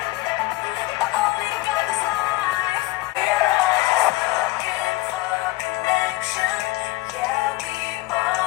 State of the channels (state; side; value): quieter; right; 19.5 dB